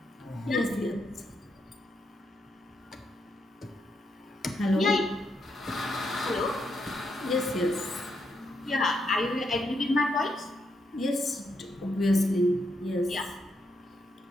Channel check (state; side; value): normal; both; correlation 0.80